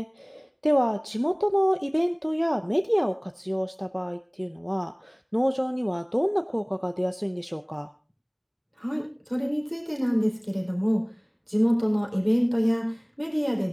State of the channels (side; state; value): both; identical; correlation 1.00